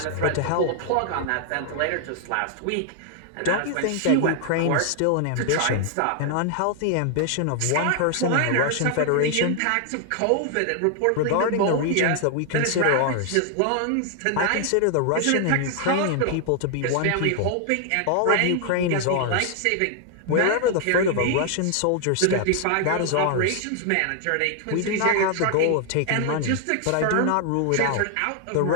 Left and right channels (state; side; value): different; both; correlation 0.00